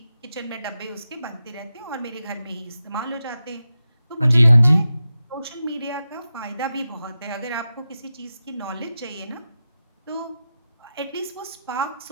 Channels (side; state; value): both; inverted; correlation -0.91